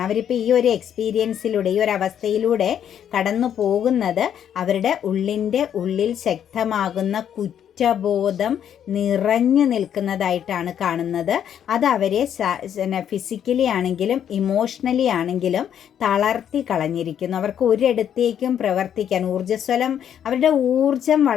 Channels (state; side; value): quieter; right; 9.3 dB